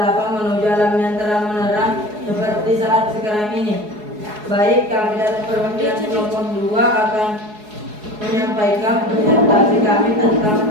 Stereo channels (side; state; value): left; late; 4.7 ms